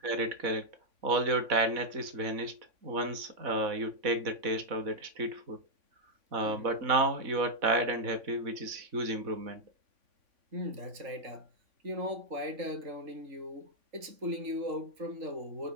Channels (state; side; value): late; left; 3.5 ms